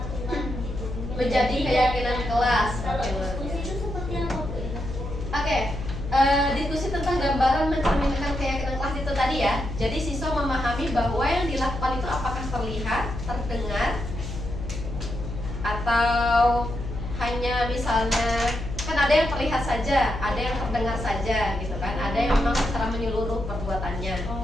gitu. Menjadi keyakinan kelas. Kalau Oke, diskusi itu seperti apa Bu? Oke, diskusi tentang gambaran mencerminkan keyakinan kelas itu tadi ya. Jadi siswa memahami bahwa yang dilakukan itu apakah terlihat, terdengar, atau hanya misalnya kan ada yang terlihat saja, ada yang terdengar saja gitu kan, ada yang memang secara menyeluruh perbuatannya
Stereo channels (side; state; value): left; noise; hum, 7 dB below the sound